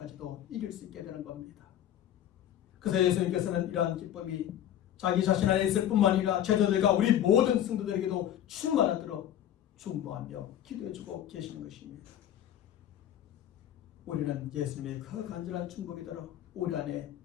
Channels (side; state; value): right; quieter; 11.1 dB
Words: 이길 수 있게 되는 겁니다. 그래서 예수님께서는 이러한 기쁨이 자기 자신 안에 있을 뿐만 아니라 제자들과 우리 모든 성도들에게도 충만하도록 중보하며 기도해주고 계시는 것입니다. 우리는 예수님의 그 간절한 중보기도로 우리 안에